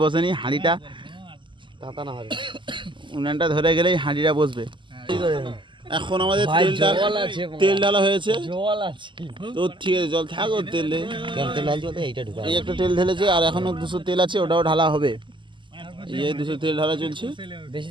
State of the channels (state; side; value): late; left; 0.24 ms